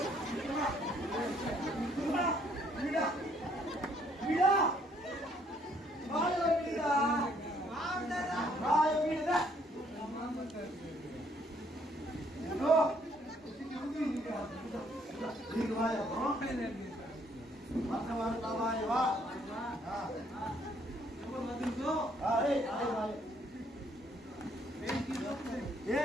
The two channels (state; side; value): normal; both; correlation 0.66